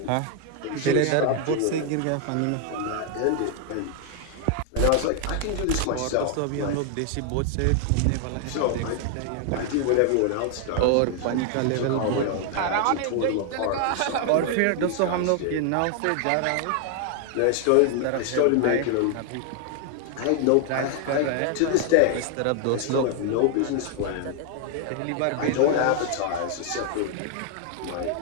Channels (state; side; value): different; both; correlation 0.00